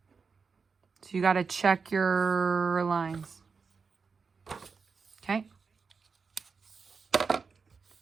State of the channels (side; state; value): left; quieter; 5.2 dB